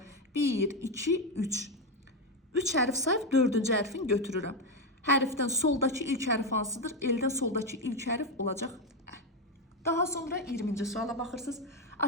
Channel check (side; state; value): both; normal; correlation 0.09